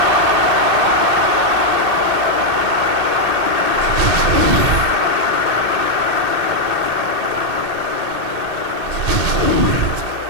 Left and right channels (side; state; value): left; late; 1.8 ms